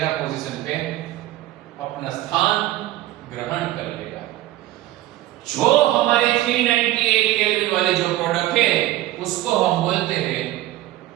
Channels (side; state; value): left; quieter; 15.4 dB